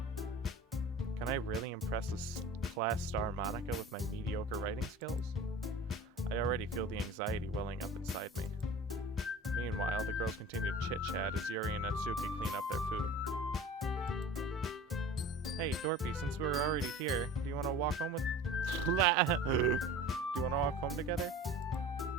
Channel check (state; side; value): normal; both; correlation 0.40